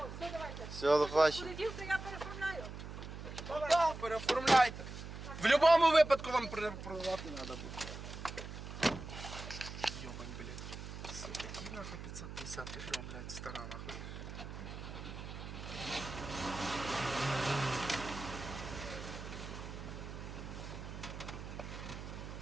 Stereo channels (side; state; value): right; noise; hum, 9 dB below the sound